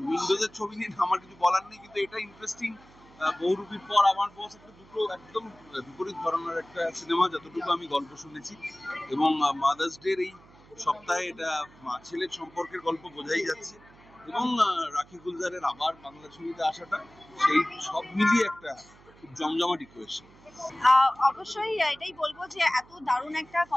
উইন্ডোজের ছবি নিয়ে আমার কিছু বলার নেই, কিন্তু এটা ইন্টারেস্টিং বহুরূপীর পর আমার বস একটা দুটো একদম বিপরীত ধরনের একটা সিনেমা, যতটুকু আমি গল্প শুনেছি। এবং মাদার্স ডের এই সপ্তাহে এটা মা ছেলের সম্পর্কের গল্প বোঝাই যাচ্ছে। এবং রাখি গুলজারের আবার বাংলা ছবিতে আসাটা, সেই সব মিলিয়ে একটা খুব জমজমাট ইকুয়েশন। অবশ্যই এটাই বলবো যে এত দারুণ একটা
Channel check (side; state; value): right; noise; hum, 25 dB below the sound